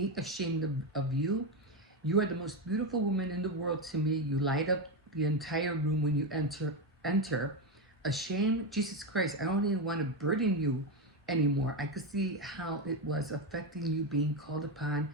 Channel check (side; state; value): both; normal; correlation 0.11